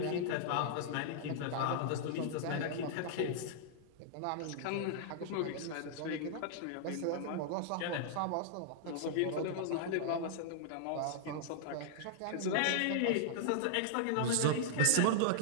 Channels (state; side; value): different; both; correlation -0.01